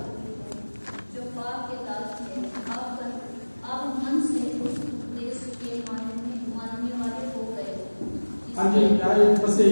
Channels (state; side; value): inverted; both; correlation -1.00